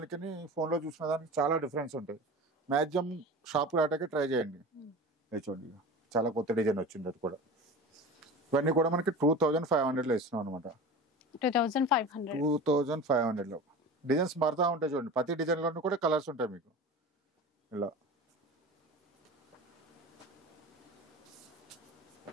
ఫోన్ లో చూసుకున్న దానికి చాలా డిఫరెన్స్ ఉంటుంది. మ్యాక్సిమం షాప్ రావడానికి ట్రై చేయండి. చూడండి చాలా కొత్త డిజైన్ వచ్చింది అది కూడా. ఇవన్నీ కూడా మనకి 2500 లో ఇస్తున్నాం అనమాట. 2500 లో డిజైన్స్ మారుతా ఉంటాయి చూడండి. ప్రతి డిజైన్ లోనూ కూడా కలర్స్ ఉంటాయి మీకు. ఇలా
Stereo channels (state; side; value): normal; both; correlation 0.33